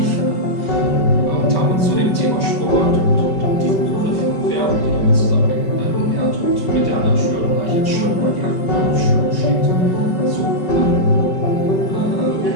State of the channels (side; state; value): right; late; 5.3 ms